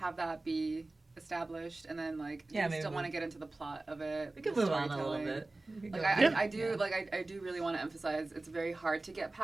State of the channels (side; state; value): left; quieter; 3.0 dB